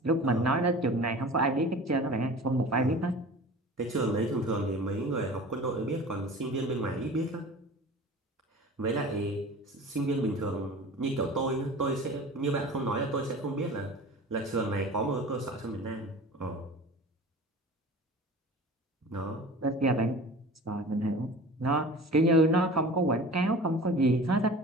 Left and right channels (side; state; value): both; normal; correlation 0.39